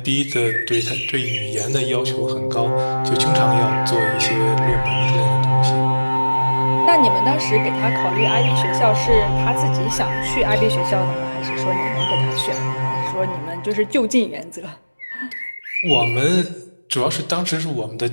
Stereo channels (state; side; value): inverted; both; correlation -1.00